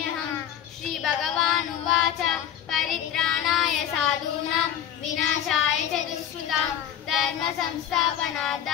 श्रीभगवानुवाच परित्राणाय साधूनां विनाशाय च दुष्कृतां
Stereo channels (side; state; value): right; quieter; 10.1 dB